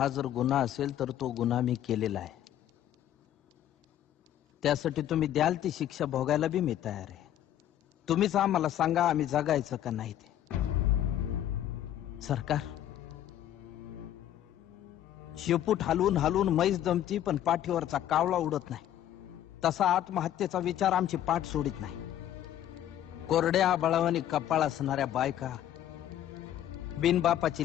जर गुन्हा असेल तर तो गुन्हा मी केलेला आहे. त्यासाठी तुम्ही द्याल ती शिक्षा भोगायला बी मी तयार आहे. तुम्हीच आम्हाला सांगा आम्ही जगायचं का नाही ते. सरकार शेपूट हलवून हलवून म्हैस दमती पण पाठीवरचा कावळा उडत नाही. तसा आत्महत्येचा विचार आमची पाठ सोडित नाही. कोरड्या आबाळावानी कपाळ असणाऱ्या बायका,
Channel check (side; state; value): right; quieter; 11.6 dB